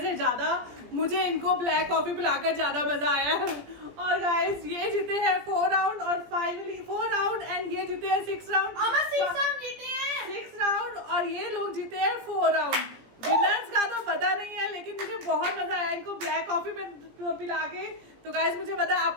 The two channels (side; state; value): left; late; 17 ms